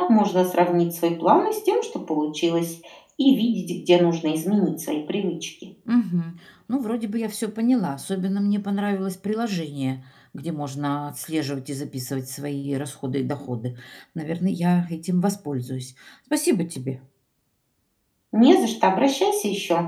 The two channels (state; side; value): identical; both; correlation 1.00